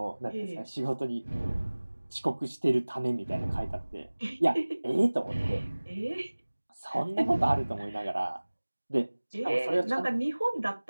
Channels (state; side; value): inverted; both; correlation -1.00